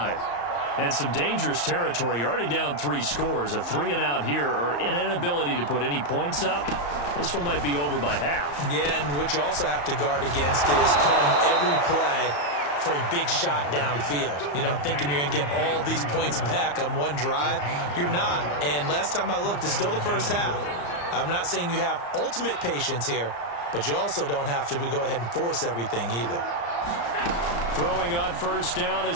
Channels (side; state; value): right; late; 34 ms